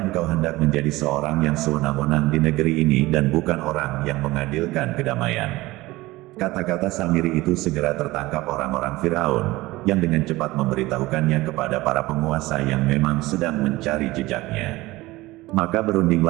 engkau hendak menjadi seorang yang sewenang-wenang di negeri ini dan bukan orang yang mengadilkan kedamaian." Kata-kata Samiri itu segera tertangkap orang-orang Firaun, yang dengan cepat memberitahukannya kepada para penguasa yang memang sedang mencari jejaknya. Maka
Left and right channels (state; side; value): quieter; left; 19.4 dB